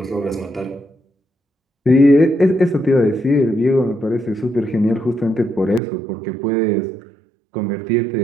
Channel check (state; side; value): drops out; left; at 5.8 s